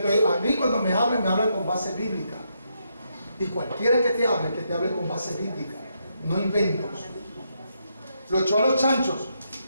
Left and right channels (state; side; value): inverted; both; correlation -0.79